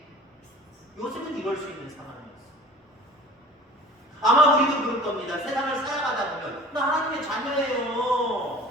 요셉은 이럴 수 있는 상황이었어요. 아마 우리도 그럴 겁니다. 세상을 살아가다 보면 나 하나님의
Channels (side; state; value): both; normal; correlation 0.44